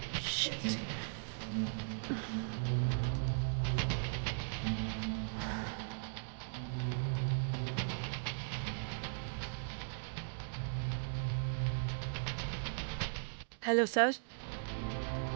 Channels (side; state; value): left; silent; digital silence